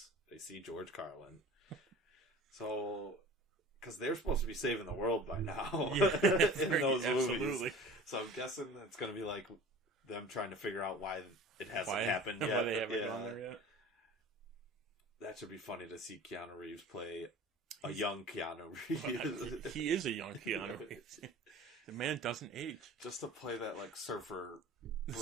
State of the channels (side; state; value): both; normal; correlation 0.41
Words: They see George Carlin. So, because they're supposed to be saving the world by now in those movies. So I'm guessing it's going to be like them trying to figure out why it hasn't happened yet. Why they haven't gone there yet. That should be funny to see Keanu Reeves play a young Keanu Reeves. He is a young Keanu Reeves. The man doesn't age. Just to play that like surfer